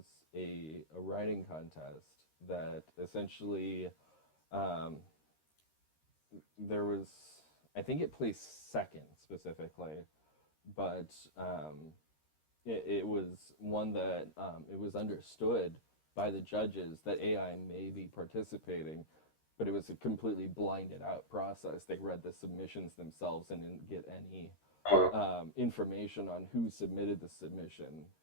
a writing contest that essentially um, there was, I think it placed second specifically, but it was one that it was understood by the judges that AI may be participating, but it was a completely blinded out process. They read the submissions themselves and didn't get any Uh, information on who submitted the submission,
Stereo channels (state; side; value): late; right; 13 ms